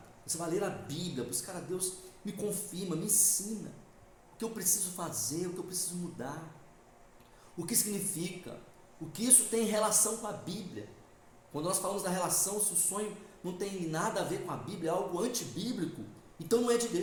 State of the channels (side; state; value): both; identical; correlation 1.00